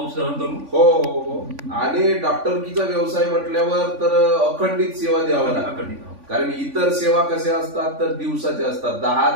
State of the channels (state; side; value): late; left; 3.5 ms